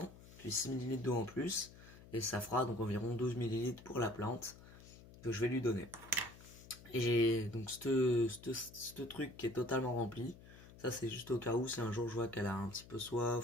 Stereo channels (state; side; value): noise; left; hum, 19 dB below the sound